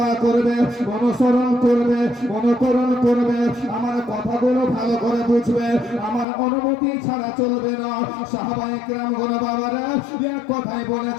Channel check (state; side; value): drops out; right; at 6.2 s